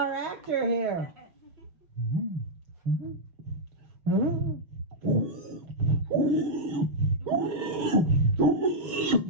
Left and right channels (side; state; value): left; late; 6.3 ms